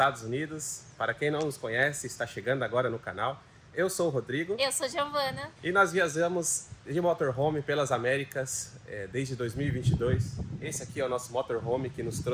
Unidos. Para quem não nos conhece, está chegando agora no canal. Eu sou o Rodrigo. Eu sou Giovana. E nós viajamos de motorhome pelas Américas desde 2022. Esse aqui é o nosso motorhome que nos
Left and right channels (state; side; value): identical; both; correlation 1.00